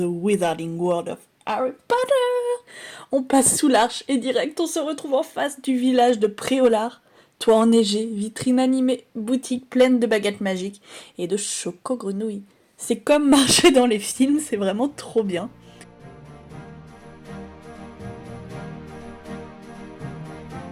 Wizarding World of Harry Potter. On passe sous l'arche et direct on se retrouve en face du village de Préolard. Toit enneigé, vitrine animée, boutique pleine de baguettes magiques et de choco-grenouilles. C'est comme marcher dans les films, c'est vraiment trop bien.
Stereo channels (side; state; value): both; identical; correlation 1.00